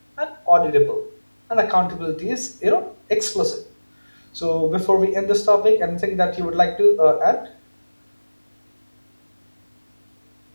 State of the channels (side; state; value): both; inverted; correlation -1.00